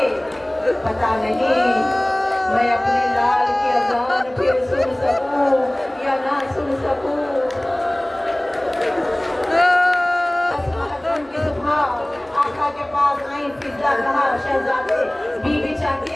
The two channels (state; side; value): noise; right; hum, 29 dB below the sound